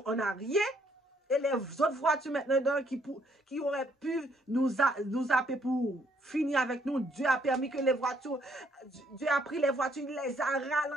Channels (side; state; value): both; normal; correlation 0.68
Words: on n'a rien. Et les autres voitures maintenant qui auraient pu nous appeler pour finir avec nous, Dieu a permis que les voitures, Dieu a pris les voitures, il les a